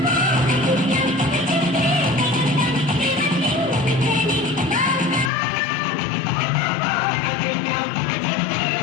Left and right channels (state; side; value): drops out; right; at 5.3 s